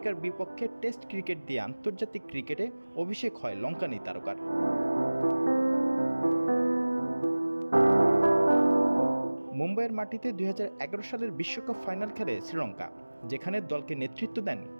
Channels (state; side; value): inverted; both; correlation -1.00